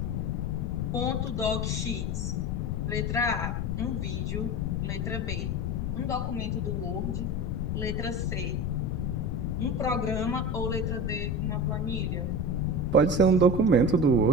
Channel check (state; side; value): noise; left; rumble, 2 dB below the sound